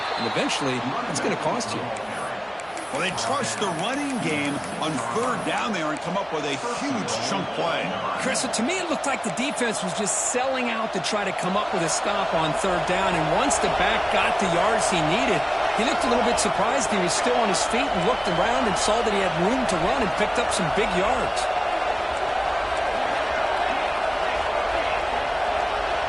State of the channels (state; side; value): identical; both; correlation 1.00